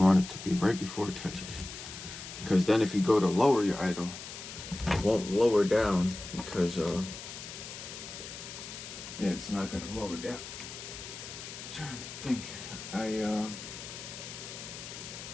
it to be right before it touches. Because then if you go to lower your idle, it won't lower down because yeah, it's not gonna lower down. I'm trying to think. I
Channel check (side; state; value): left; noise; hiss, 11 dB below the sound